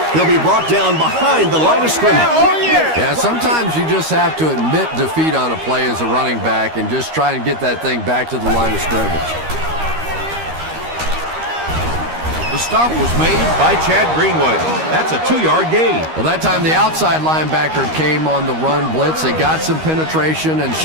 He'll be brought down behind the line of scrimmage. Yeah, sometimes you just have to admit defeat on a play as a running back and just try and get that thing back to the line of scrimmage. The stop was made by Chad Greenwood. That's a 2-yard gain. Well, that time the outside linebacker came on the run blitz. They got some penetration and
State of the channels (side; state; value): left; late; 13 ms